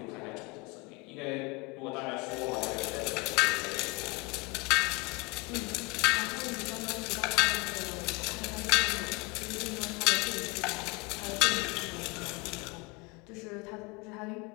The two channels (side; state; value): right; quieter; 26.1 dB